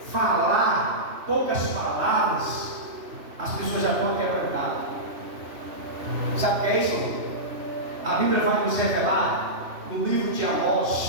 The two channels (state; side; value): late; left; 3.1 ms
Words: falar poucas palavras, as pessoas já estão quebrantadas. Sabe o que é isso? A Bíblia vai nos revelar no livro de